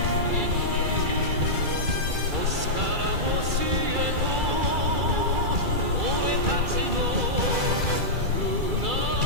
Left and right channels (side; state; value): left; late; 2.3 ms